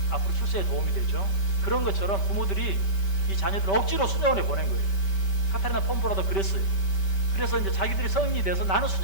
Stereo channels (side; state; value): right; late; 5.2 ms